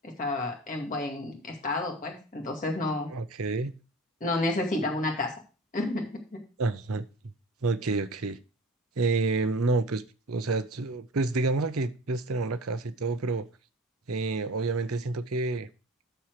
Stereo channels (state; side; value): normal; both; correlation 0.38